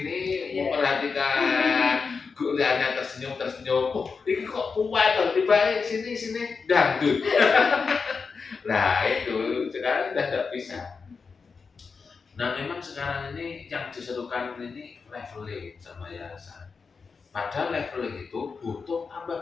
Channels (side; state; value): right; quieter; 5.1 dB